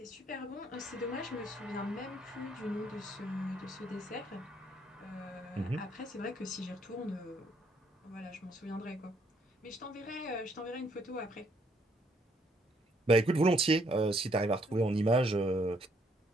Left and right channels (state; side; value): normal; both; correlation 0.68